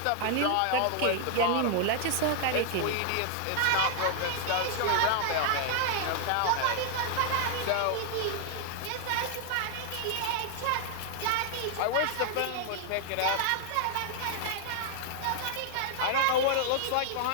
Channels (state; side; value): different; both; correlation 0.00